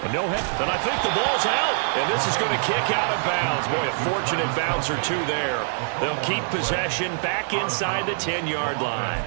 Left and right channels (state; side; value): silent; left; digital silence